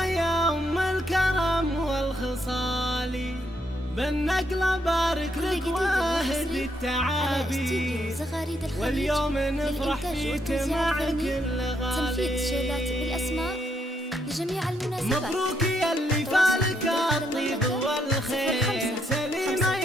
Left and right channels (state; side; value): normal; both; correlation 0.75